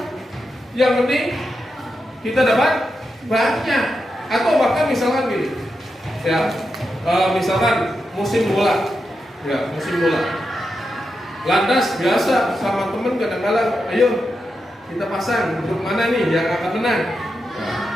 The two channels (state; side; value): normal; both; correlation 0.87